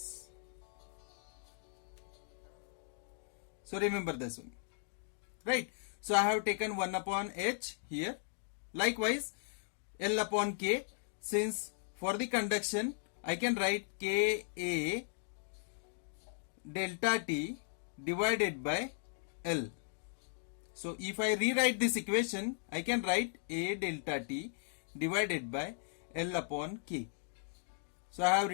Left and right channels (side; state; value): right; silent; digital silence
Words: So remember this one, right? So I have taken 1 upon H here. Likewise L upon K, since for the conduction I can write Ka delta T divided by L. So if I rewrite this equation, I can write A delta T divided by L upon K. So I have